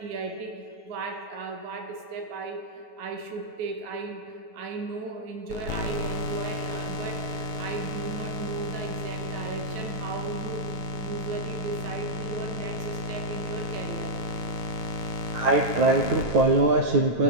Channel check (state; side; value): late; left; 9.3 ms